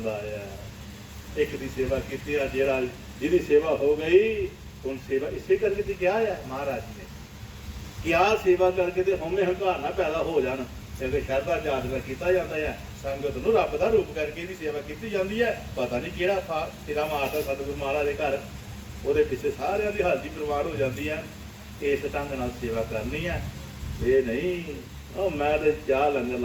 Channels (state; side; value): identical; both; correlation 1.00